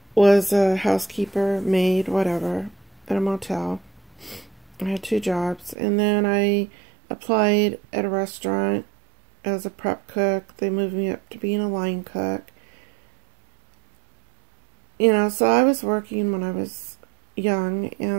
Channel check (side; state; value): left; drops out; at 5.8 s